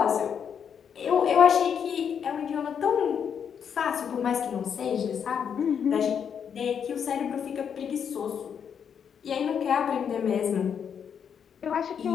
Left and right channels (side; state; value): right; quieter; 7.6 dB